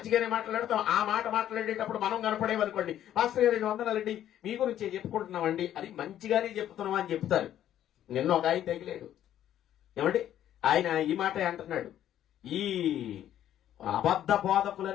మాట్లాడతాం. ఆ మాట మాట్లాడేటప్పుడు మనం కనపడేవనుకోండి, పాస్టర్ గారు 2 వందనాలండి, మీ గురించి చెప్పుకుంటున్నామండి అని మంచిగానే చెప్తున్నాం అని చెప్తారు. నిన్న ఒక ఆయన తగిలేడు. ఏమండి, ఆయన ఈ మాట అంటున్నాడు, ఈ అబద్ధ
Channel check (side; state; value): right; quieter; 11.4 dB